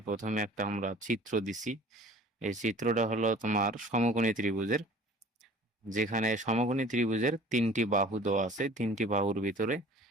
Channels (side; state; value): both; normal; correlation 0.47